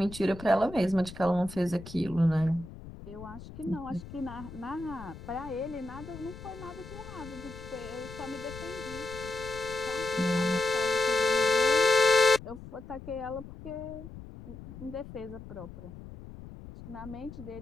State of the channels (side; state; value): left; noise; rumble, 14 dB below the sound